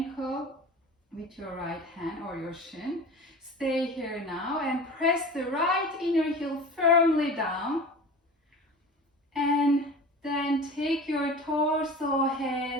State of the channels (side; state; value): both; normal; correlation 0.36